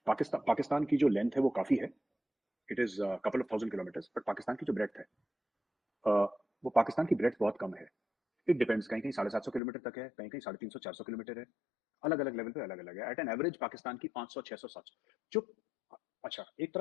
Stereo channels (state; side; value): drops out; right; at 9.6 s